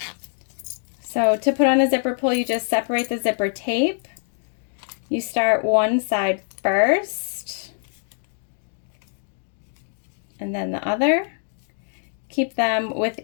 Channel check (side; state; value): right; silent; digital silence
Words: So to put on a zipper pull, you just separate the zipper tape. You start one side first, and then the other. Keep them